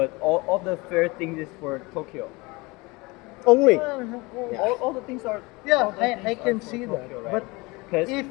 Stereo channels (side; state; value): right; quieter; 24.5 dB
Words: all the fair things is for Tokyo. Only. All the things are Yeah, all the I things can are for see that. Tokyo, right? But Because if